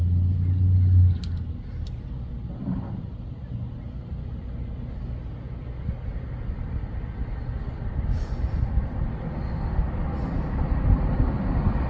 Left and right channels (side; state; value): both; identical; correlation 1.00